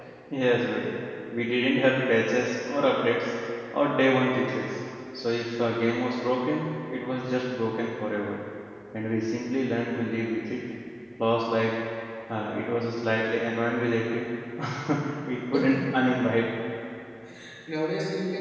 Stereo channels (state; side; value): identical; both; correlation 1.00